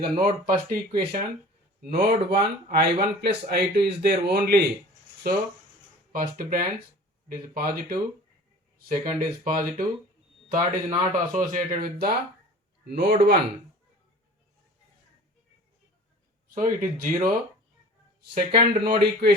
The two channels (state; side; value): normal; both; correlation 0.43